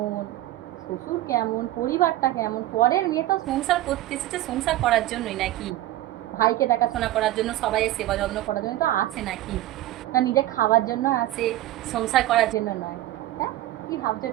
শ্বশুর কেমন, পরিবারটা কেমন। পরের মেয়ে তো সংসার করতে এসেছে সংসার করার জন্যই নাকি? ভাইকে দেখাশোনা করার জন্য, সবাইয়ের সেবা যত্ন করার জন্য তো আছে নাকি? না নিজে খাওয়ার জন্য আছে, সংসার করার জন্য নয়। হ্যাঁ, কি ভাবছো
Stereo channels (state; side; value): quieter; left; 15.1 dB